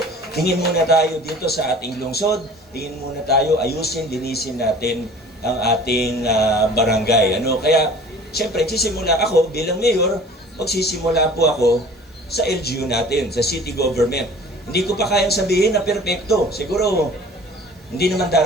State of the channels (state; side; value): normal; both; correlation 0.46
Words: tingin muna tayo dito sa ating lungsod, tingin muna tayo, ayusin, linisin natin ang ating barangay. Kaya, siyempre, sisimula ako bilang mayor, magsisimula po ako sa LGU natin, sa city government. Hindi ko pa kayang sabihin na perpekto. Siguro, hindi naman